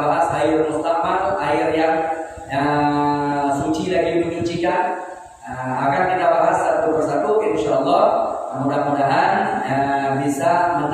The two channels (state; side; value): identical; both; correlation 1.00